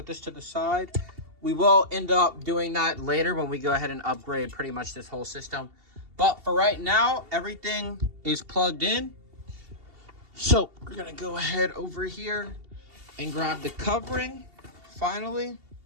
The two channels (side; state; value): left; late; 2.7 ms